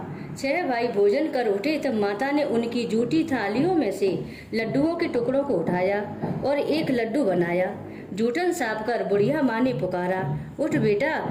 6 भाई भोजन कर उठे तब माता ने उनकी जूठी थालियों में से लड्डुओं के टुकड़ों को उठाया और एक लड्डू बनाया। जूठन साफ कर बुढ़िया माँ ने पुकारा, उठ बेटा,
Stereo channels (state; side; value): identical; both; correlation 1.00